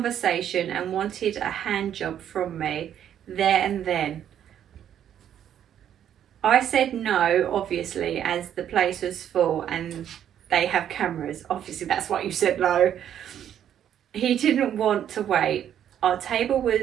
and wanted a hand job from me there and then. I said no, obviously, as the place was full and they have cameras. Obviously, that's why you said no. He didn't want to wait. Our table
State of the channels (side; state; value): left; quieter; 10.0 dB